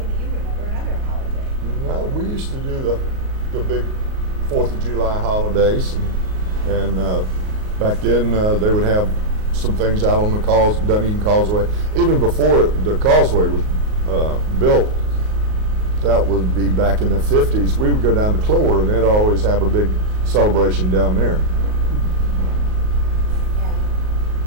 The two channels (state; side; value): late; left; 38 ms